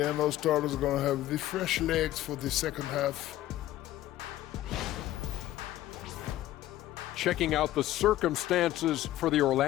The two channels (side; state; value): right; quieter; 14.5 dB